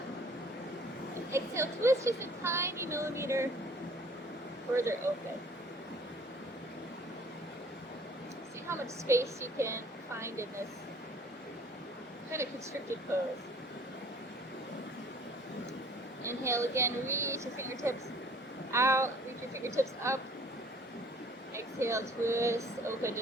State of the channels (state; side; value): normal; both; correlation 0.53